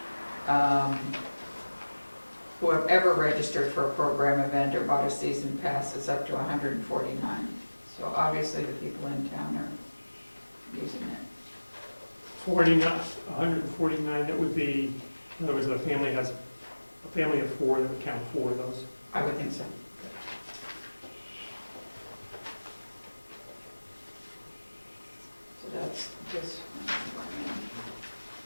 who have ever registered for a program event or bought a season pass is up to 149. So obviously the people in town are using it. 149, that would be, in other words, a family of 4, that would count 4 of those. I would think so. So that's this one.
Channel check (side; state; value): both; inverted; correlation -1.00